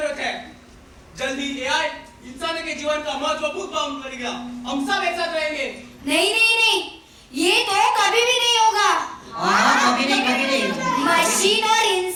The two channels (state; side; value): identical; both; correlation 1.00